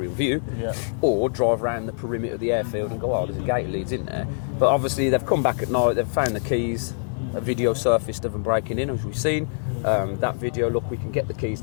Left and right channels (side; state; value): right; silent; digital silence